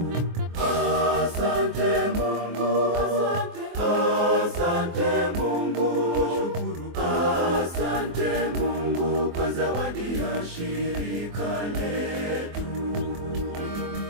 Asante Mungu, asante Mungu, asante Mungu kwa zawadi ya shirika letu.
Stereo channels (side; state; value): left; late; 24 ms